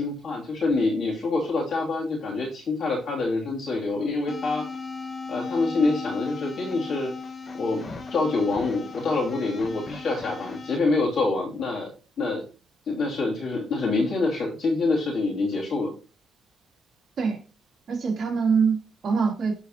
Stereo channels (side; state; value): both; normal; correlation 0.79